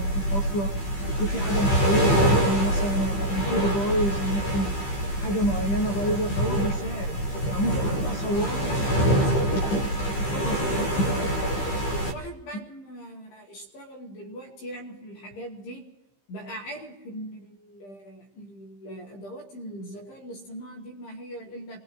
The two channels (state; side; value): late; right; 15 ms